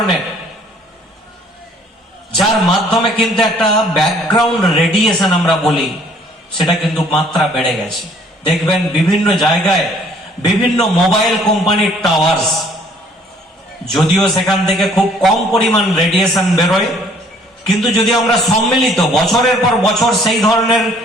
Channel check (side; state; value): both; normal; correlation 0.59